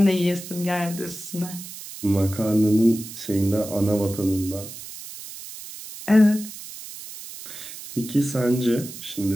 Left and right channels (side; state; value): right; noise; hiss, 13 dB below the sound